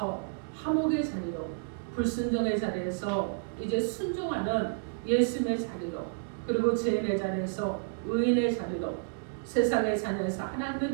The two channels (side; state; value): left; silent; digital silence